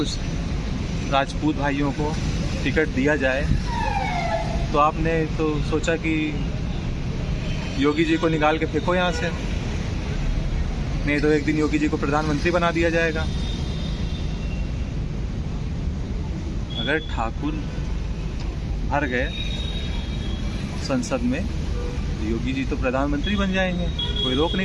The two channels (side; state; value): both; identical; correlation 1.00